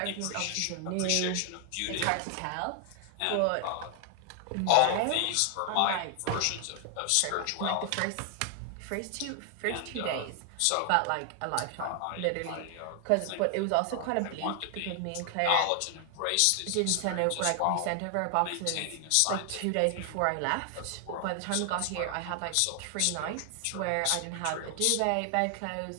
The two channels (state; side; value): different; both; correlation 0.00